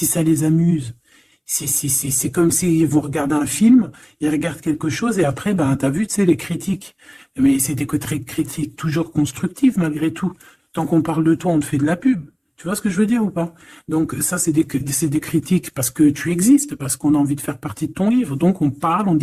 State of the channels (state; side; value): identical; both; correlation 1.00